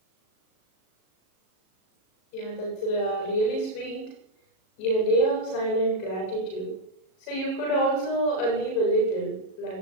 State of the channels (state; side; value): late; right; 37 ms